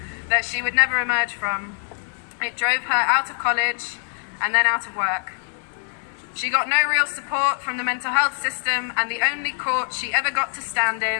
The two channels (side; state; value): right; silent; 63 dB below the other